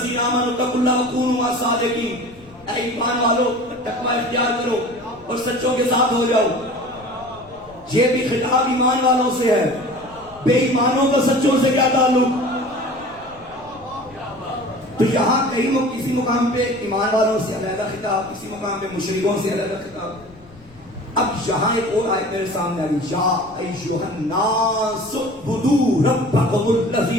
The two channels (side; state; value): left; noise; rumble, 25 dB below the sound